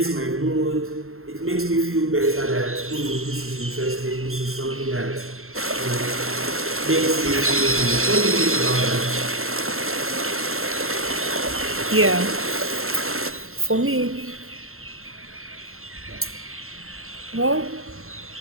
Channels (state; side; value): late; left; 0.62 ms